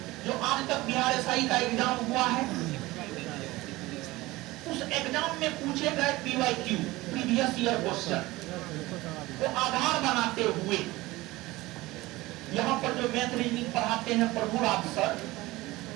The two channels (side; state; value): left; quieter; 19.6 dB